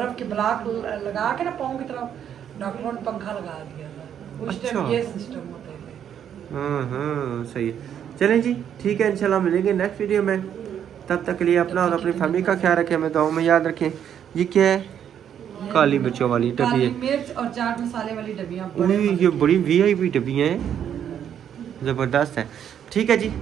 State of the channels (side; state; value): left; quieter; 9.2 dB